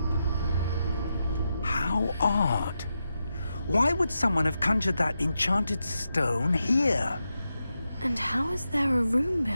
How odd. Why would someone have conjured that enchanted stone here? And how is there a room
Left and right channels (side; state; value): both; inverted; correlation -0.87